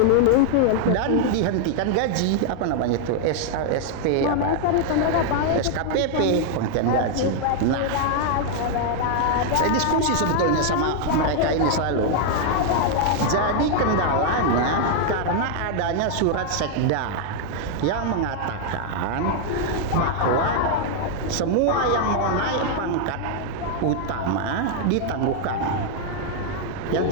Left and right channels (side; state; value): both; different; correlation 0.00